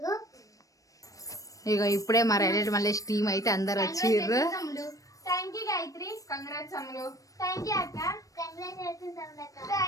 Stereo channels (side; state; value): right; late; 0.16 ms